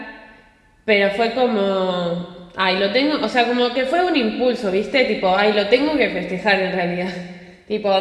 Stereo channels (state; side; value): identical; both; correlation 1.00